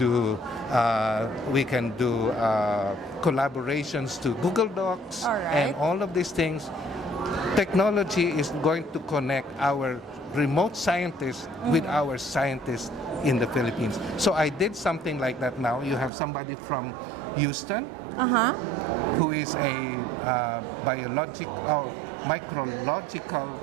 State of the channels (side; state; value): left; drops out; at 16.1 s